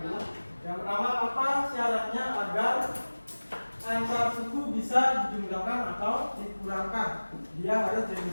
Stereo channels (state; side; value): inverted; both; correlation -1.00